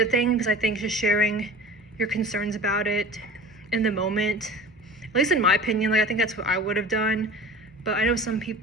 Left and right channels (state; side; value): normal; both; correlation 0.39